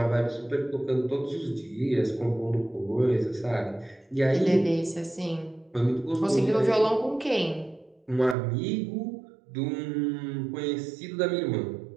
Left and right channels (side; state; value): left; drops out; at 8.3 s